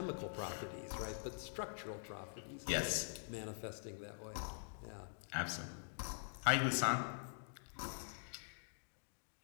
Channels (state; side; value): silent; right; digital silence